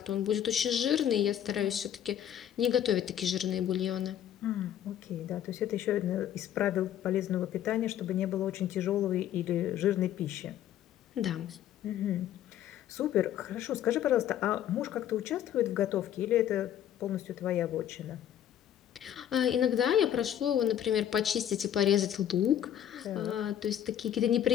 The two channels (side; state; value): right; quieter; 10.7 dB